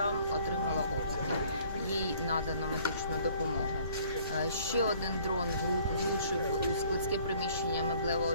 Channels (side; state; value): both; inverted; correlation -0.56